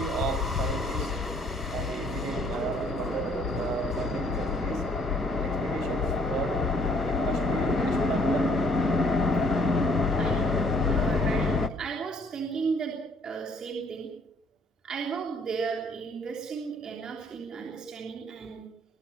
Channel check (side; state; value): both; normal; correlation 0.63